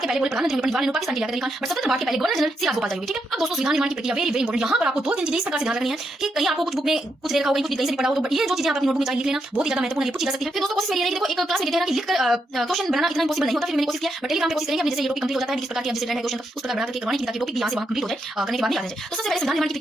के पहले प्रधानमंत्री पंडित जवाहरलाल नेहरू, पाकिस्तान के लिया खान, बट स्वतंत्र भारत के पहले गवर्नर जनरल सी राजगोपाल चारी हुए। ठीक है, अब दोस्तों संविधान निर्माण की प्रक्रिया वेरी वेरी इंपॉर्टेंट। यहाँ पर आपको 2-3 चीजें इस प्रकार से ध्यान रखनी है कि कहीं आपको कुछ बुक में कुछ दे रखा होगा, कुछ कहीं से भी पढ़ा हो, तो ये जो चीजें आप अपनी नोटबुक में चाहिए लिख लेना, बहुत ही ज्यादा महत्वपूर्ण है, पूछी जा सकती है। फिर दोस्तों कोशिश मेरी रहेगी, देखो एक क्लास में कहते हैं ना कि लिखकर क्वेश्चन बनाना इतना इंपॉसिबल नहीं होता, फिर मैंने कोशिश किया, बट टेलीग्राम पे कोशिश करेंगे, जैसे ये टॉपिक कंप्लीट हो जाता है, किस प्रकार की जैसे है क्वेश्चन उस प्रकार बना करके करवाने की, ताकि टॉपिक भी यहाँ से वहाँ कंप्लीट हो जाए, करने के बाद नहीं आ जाए। तो सबसे पहले संविधान निर्माण की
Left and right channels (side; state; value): both; normal; correlation 0.81